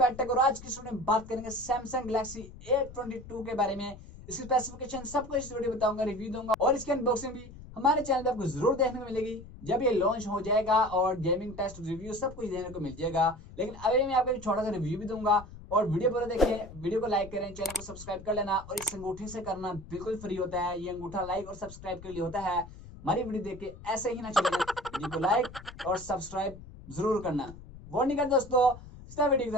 आज की स्टूडियो में बात करेंगे सैमसंग गैलेक्सी A22 के बारे में। इसकी स्पेसिफिकेशन सब कुछ इस वीडियो बताऊंगा, रिव्यू दूंगा और इसकी अनबॉक्सिंग भी हमारे चैनल पे आपको जरूर देखने को मिलेगी जब ये लॉन्च हो जाएगा, और गेमिंग टेस्ट रिव्यू सब कुछ देखने को मिल जाएगा। लेकिन अभी मैं आपको एक छोटा सा रिव्यू भी दूंगा, और वीडियो पूरा देखिए, वीडियो को लाइक करें, चैनल को सब्सक्राइब कर लेना। और इस अंगूठे से करना बिल्कुल फ्री होता है, ये अंगूठा लाइक और सब्सक्राइब के लिए होता है। हमारी वीडियो देख के ऐसे ही ना चलेगा, वीडियो को लाइक और सब्सक्राइब जरूर करना। वो नहीं कर दोस्तों, वीडियो की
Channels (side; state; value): left; noise; rumble, 16 dB below the sound